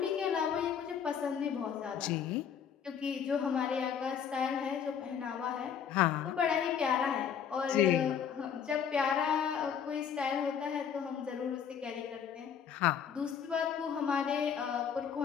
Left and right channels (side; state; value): right; quieter; 7.8 dB